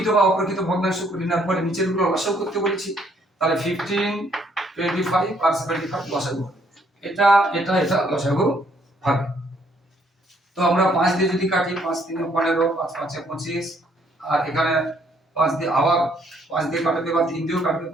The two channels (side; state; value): both; normal; correlation 0.67